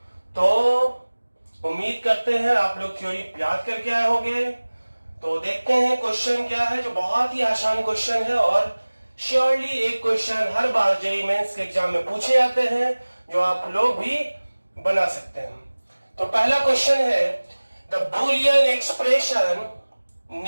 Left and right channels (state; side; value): inverted; both; correlation -1.00